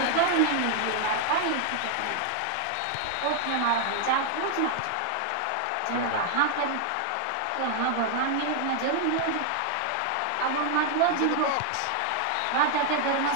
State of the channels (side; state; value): both; different; correlation 0.00